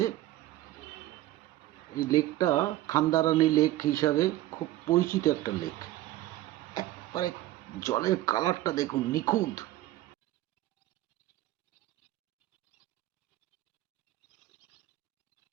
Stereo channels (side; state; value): left; quieter; 15.2 dB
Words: এই লেকটা খান্দারানি লেক হিসাবে খুব পরিচিত একটা লেক। একবারে জলের কালারটা দেখুন, নিখুঁত।